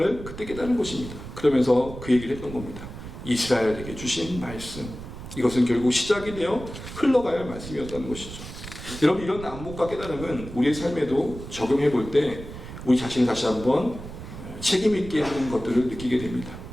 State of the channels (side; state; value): right; noise; rumble, 12 dB below the sound